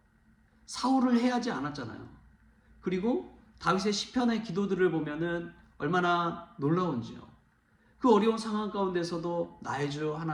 사울을 해하지 않았잖아요. 그리고 다윗의 시편의 기도들을 보면은 얼마나 놀라운지요. 그 어려운 상황 가운데서도 나의 주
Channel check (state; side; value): identical; both; correlation 1.00